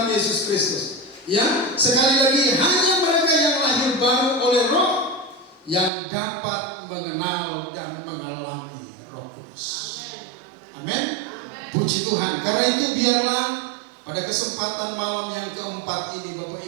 Yesus Kristus, ya, sekali lagi hanya mereka yang lahir baru oleh Roh yang dapat mengenal dan mengalami Roh Kudus. Amin. Puji Tuhan. Karena itu biarlah pada kesempatan malam yang keempat ini Bapak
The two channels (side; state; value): left; drops out; at 5.9 s